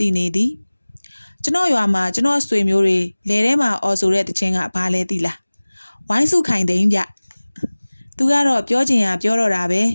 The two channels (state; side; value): inverted; both; correlation -1.00